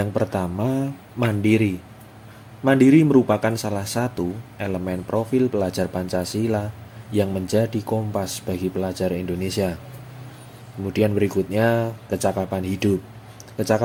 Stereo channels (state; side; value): identical; both; correlation 1.00